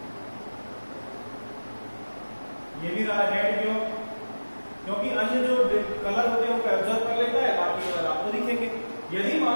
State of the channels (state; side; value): inverted; both; correlation -1.00